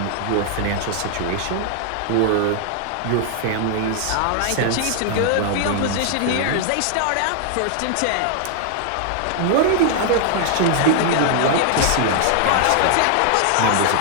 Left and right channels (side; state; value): both; different; correlation 0.00